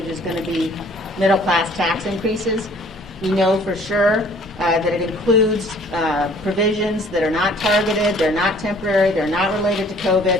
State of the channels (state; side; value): normal; both; correlation 0.55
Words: is going to be middle-class tax increases. We know for sure that it includes provisions that are not targeted, they're not temporary, they're not related to COVID,